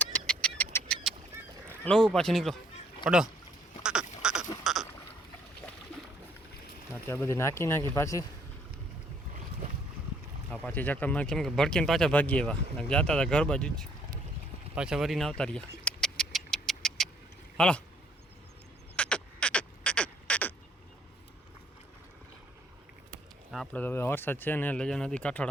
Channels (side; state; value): both; normal; correlation 0.64